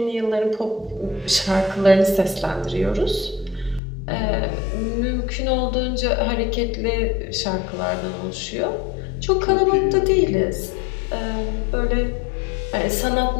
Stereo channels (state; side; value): drops out; right; at 3.8 s